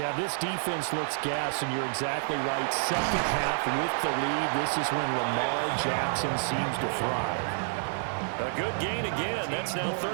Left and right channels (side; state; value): left; silent; digital silence